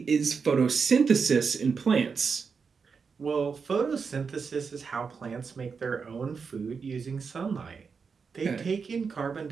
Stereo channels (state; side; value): quieter; left; 5.5 dB